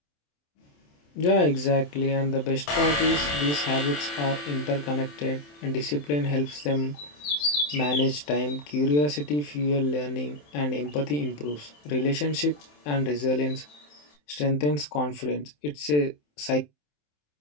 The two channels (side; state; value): right; late; 27 ms